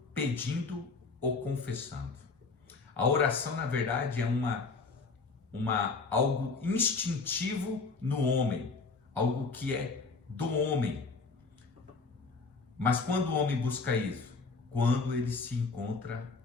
pedindo ou confessando. A oração, na verdade, é algo instintivo no homem, algo que é do homem. Mas quando o homem busca isso? Quando ele se encontra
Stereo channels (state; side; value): quieter; right; 4.3 dB